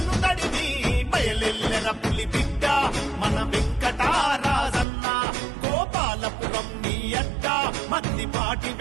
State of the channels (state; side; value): drops out; left; at 4.9 s